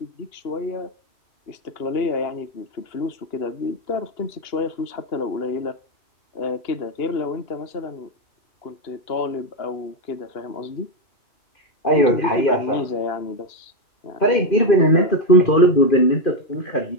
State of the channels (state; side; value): late; right; 2.8 ms